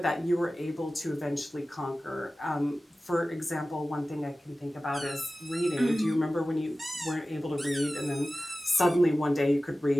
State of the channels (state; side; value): normal; both; correlation 0.96